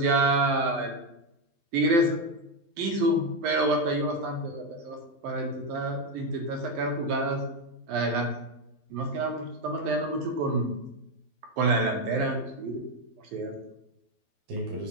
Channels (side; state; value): left; late; 12 ms